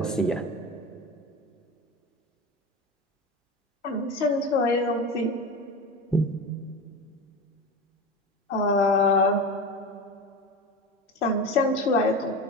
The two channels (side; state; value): both; normal; correlation 0.26